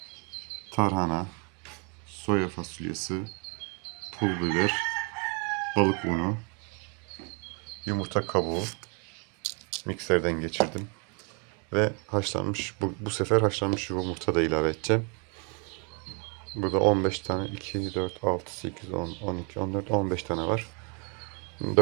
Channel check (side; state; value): left; quieter; 34.8 dB